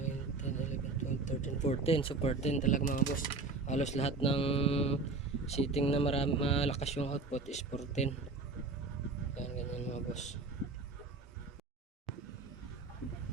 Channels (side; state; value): left; quieter; 3.8 dB